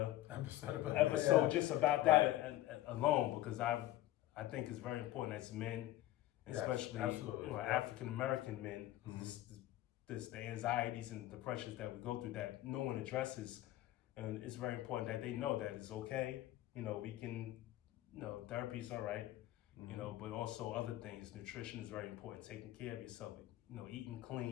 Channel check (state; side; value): quieter; right; 15.0 dB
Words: episode just about that alone, because I think it's very important as men, especially African American men, the anxieties and the pressures that we go through that no one addresses, and it's very important that they know that it's okay. We can, therapy is all right, but also other things. Nutrition is very important. Taking care of yourself, eating